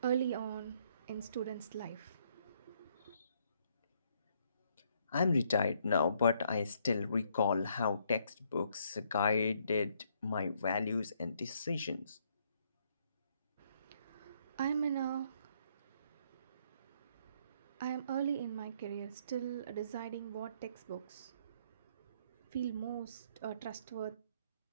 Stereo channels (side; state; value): both; inverted; correlation -0.69